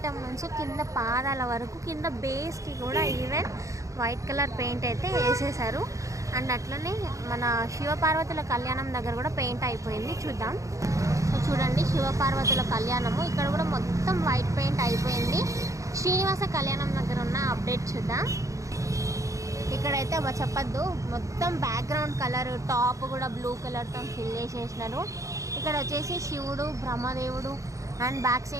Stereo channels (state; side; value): late; left; 0.15 ms